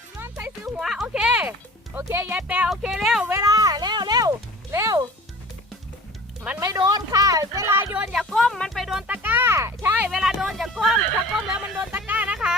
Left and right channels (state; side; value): normal; both; correlation 0.44